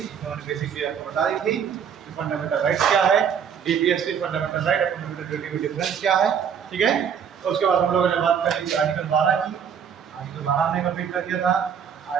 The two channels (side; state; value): left; quieter; 7.7 dB